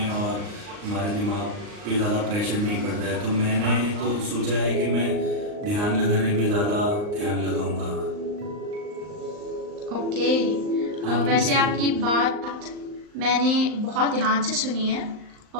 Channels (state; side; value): late; left; 39 ms